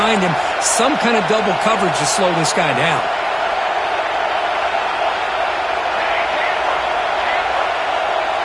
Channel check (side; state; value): both; identical; correlation 1.00